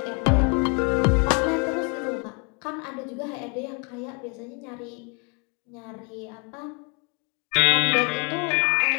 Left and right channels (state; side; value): quieter; right; 32.1 dB